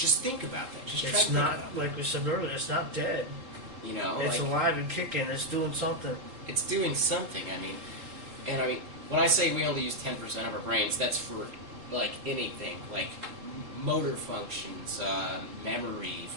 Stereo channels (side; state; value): left; late; 3.8 ms